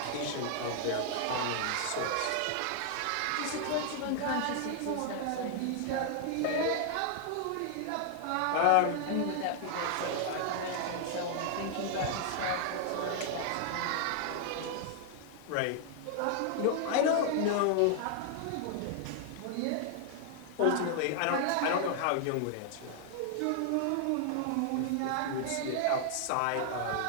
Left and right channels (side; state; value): both; different; correlation 0.00